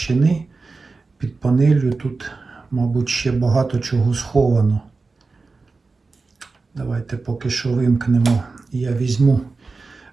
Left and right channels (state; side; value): quieter; left; 4.0 dB